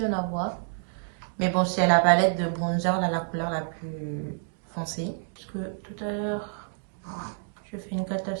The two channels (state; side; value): silent; left; digital silence